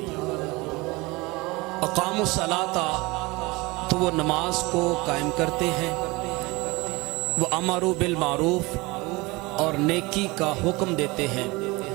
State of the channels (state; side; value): quieter; left; 23.5 dB